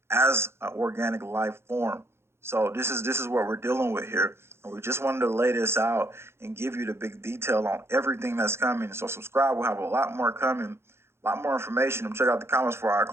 as an organic life form. So this is what we're dealing with here. And we just wanted to lay this out and give you the big detail on everything that's coming. So subscribe. We'll have a lot more coming, a lot more information. And check out the comments before I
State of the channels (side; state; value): left; late; 0.12 ms